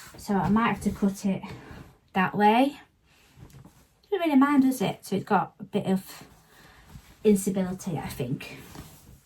So I might have to cut it that way. Doesn't really mind, does it? So it's got a bit of instability, I think.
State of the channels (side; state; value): both; identical; correlation 1.00